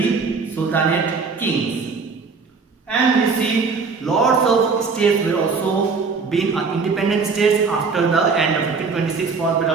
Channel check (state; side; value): quieter; left; 4.8 dB